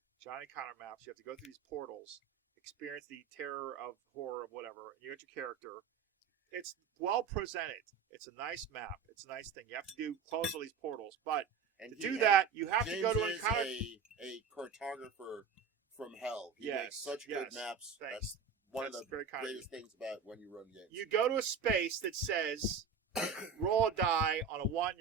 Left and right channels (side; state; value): left; quieter; 6.1 dB